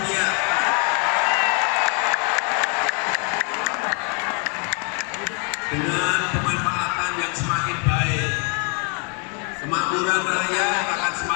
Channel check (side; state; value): right; quieter; 38.4 dB